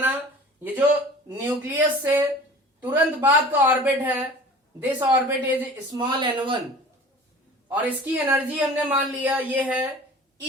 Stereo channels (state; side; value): normal; both; correlation 0.43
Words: ये जो न्यूक्लियस से तुरंत बाद का ऑर्बिट है, this orbit is small n1 और इसकी एनर्जी हमने मान लिया ये है